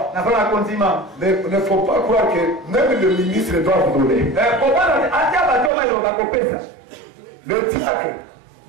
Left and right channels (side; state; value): left; drops out; at 5.7 s